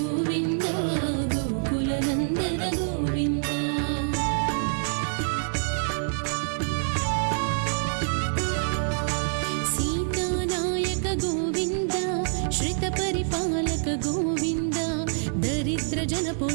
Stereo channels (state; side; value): silent; left; digital silence